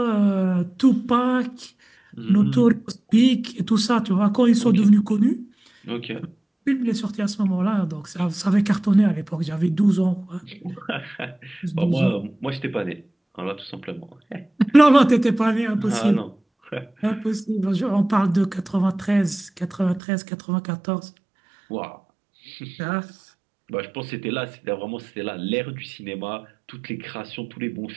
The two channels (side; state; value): left; drops out; at 20.0 s